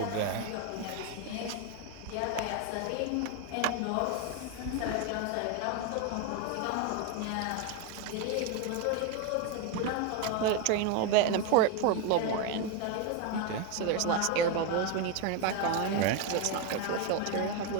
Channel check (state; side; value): different; both; correlation 0.02